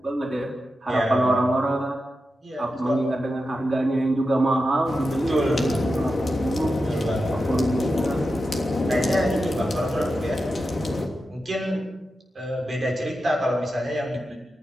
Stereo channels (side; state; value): both; normal; correlation 0.90